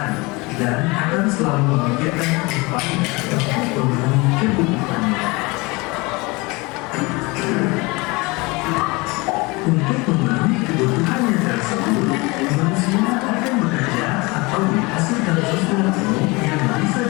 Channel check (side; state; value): right; quieter; 25.1 dB